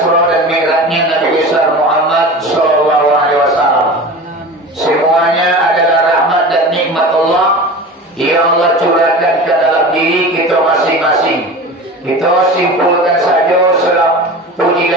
dan Mi'rajnya Nabi besar Muhammad sallallahu alaihi wasallam. Semuanya adalah rahmat dan nikmat Allah yang Allah curahkan ke dalam diri kita masing-masing. Kita simpulkan saja salam puji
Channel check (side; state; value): both; normal; correlation 0.33